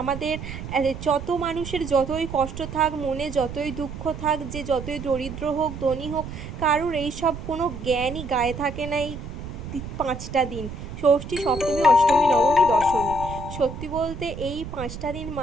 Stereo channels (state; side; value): noise; right; rumble, 9 dB below the sound